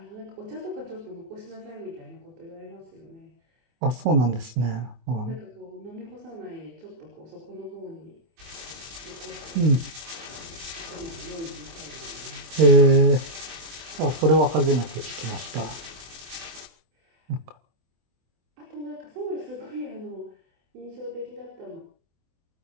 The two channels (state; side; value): late; left; 24 ms